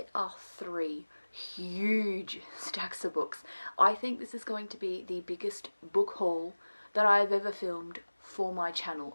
are 3 huge stacks of books. I think this is going to be the biggest book haul that I've ever filmed for my channel.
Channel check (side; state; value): both; inverted; correlation -1.00